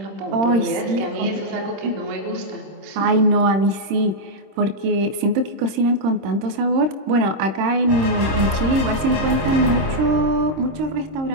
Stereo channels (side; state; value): left; late; 26 ms